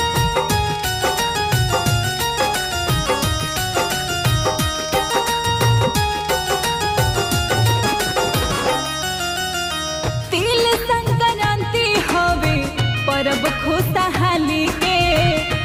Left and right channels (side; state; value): both; identical; correlation 1.00